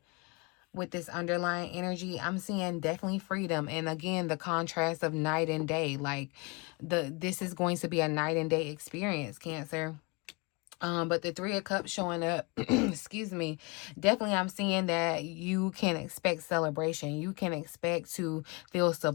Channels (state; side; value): quieter; right; 28.6 dB